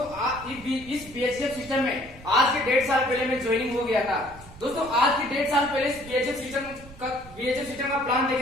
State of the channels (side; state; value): right; noise; rumble, 18 dB below the sound